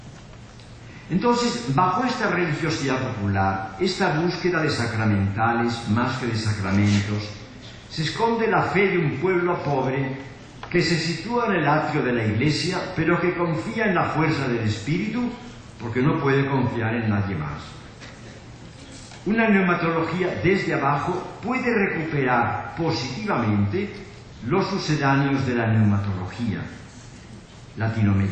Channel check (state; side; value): identical; both; correlation 1.00